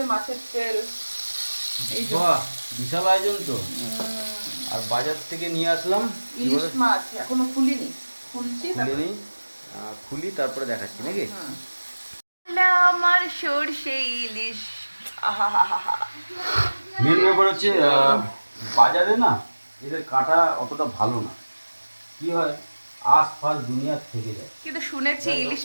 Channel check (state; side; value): inverted; both; correlation -1.00